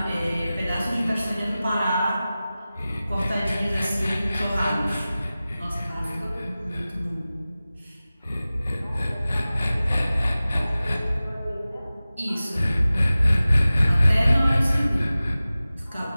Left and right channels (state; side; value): inverted; both; correlation -0.97